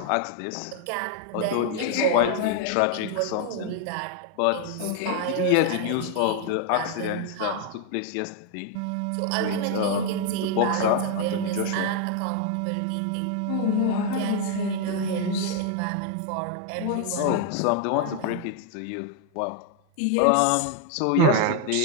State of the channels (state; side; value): different; both; correlation 0.00